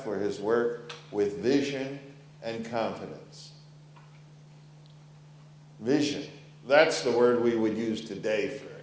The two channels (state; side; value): identical; both; correlation 1.00